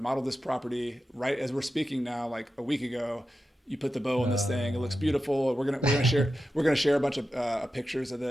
this property right as we're speaking now, like a week ago. You put the bow on this thing. It looks beautiful. We're gonna share a bunch of pictures of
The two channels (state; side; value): normal; both; correlation 0.91